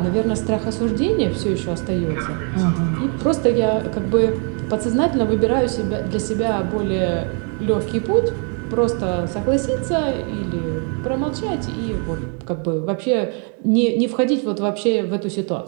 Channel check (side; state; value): left; quieter; 39.5 dB